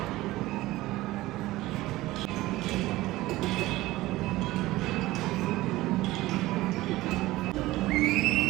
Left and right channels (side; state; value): left; quieter; 17.9 dB